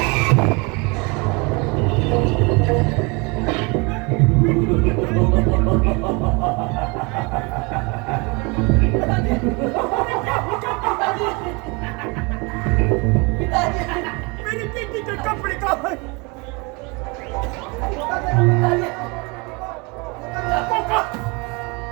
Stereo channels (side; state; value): left; quieter; 28.8 dB